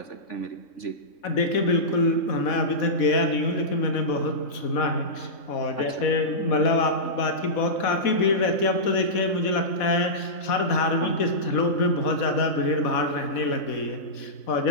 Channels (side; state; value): right; late; 4.1 ms